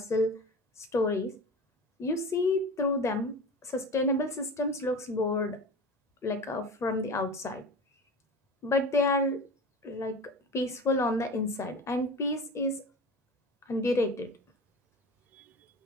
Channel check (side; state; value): both; normal; correlation 0.33